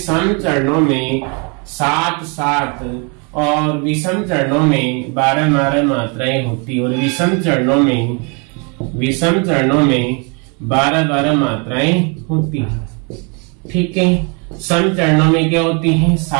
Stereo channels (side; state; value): left; quieter; 33.9 dB